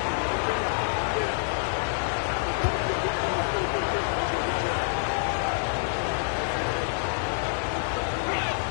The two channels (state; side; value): silent; right; digital silence